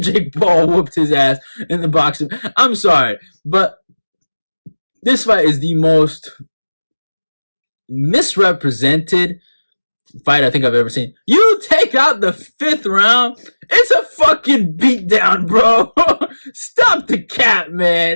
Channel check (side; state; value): both; inverted; correlation -1.00